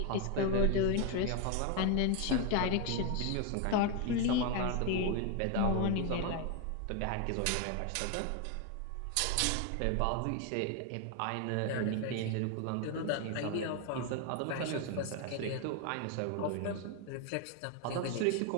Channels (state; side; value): different; both; correlation 0.01